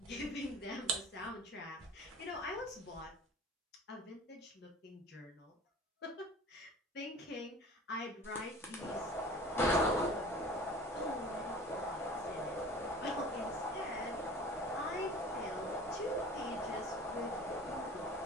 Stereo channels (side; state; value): both; normal; correlation 0.42